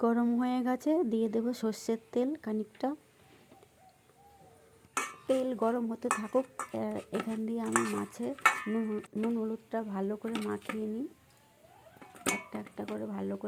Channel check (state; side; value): identical; both; correlation 1.00